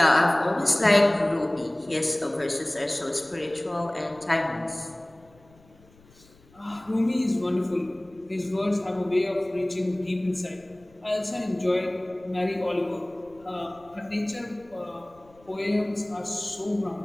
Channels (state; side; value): noise; left; rumble, 28 dB below the sound